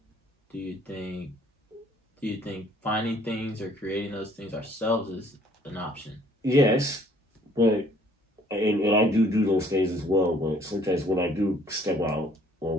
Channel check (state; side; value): normal; both; correlation 0.59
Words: do you think finding things or creating those things ourselves is an option? Yes, but and I do those things as well. But sometimes when I do step out or